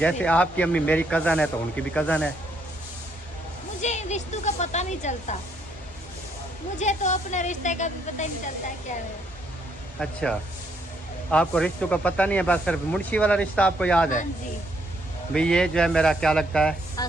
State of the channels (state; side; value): normal; both; correlation 0.72